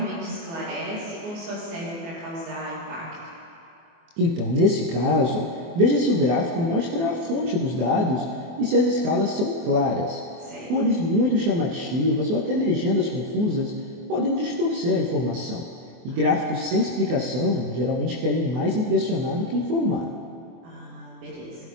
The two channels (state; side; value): late; left; 24 ms